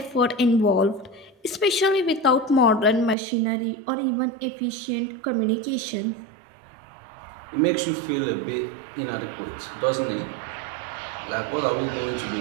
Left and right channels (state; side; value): drops out; left; at 3.2 s